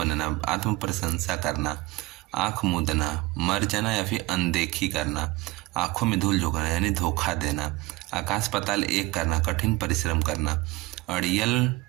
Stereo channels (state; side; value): quieter; left; 20.6 dB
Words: आत्म प्रशंसा करना। आंख मूंदना, मर जाना या फिर अनदेखी करना। आंखों में धूल झोंकना यानी धोखा देना। आकाश पाताल एक करना, कठिन परिश्रम करना। अड़ियल